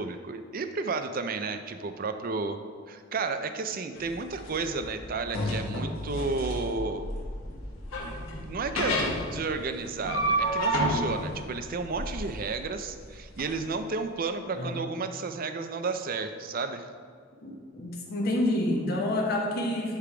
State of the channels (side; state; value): both; normal; correlation 0.21